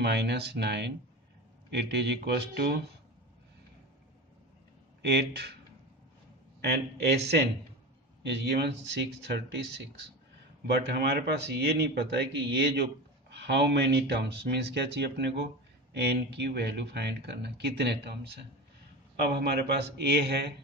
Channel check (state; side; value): normal; both; correlation 0.27